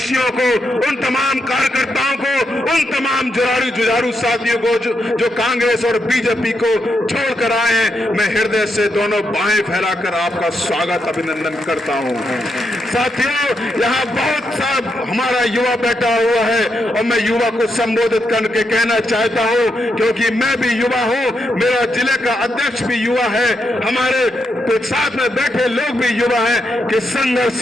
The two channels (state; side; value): normal; both; correlation 0.82